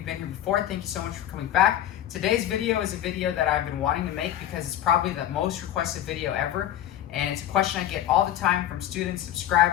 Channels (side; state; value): right; quieter; 11.8 dB